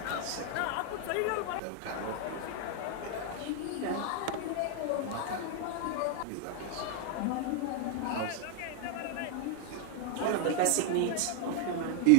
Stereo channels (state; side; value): different; both; correlation 0.00